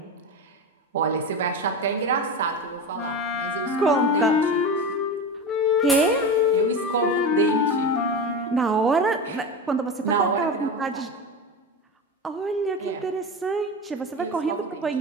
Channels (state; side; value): normal; both; correlation 0.23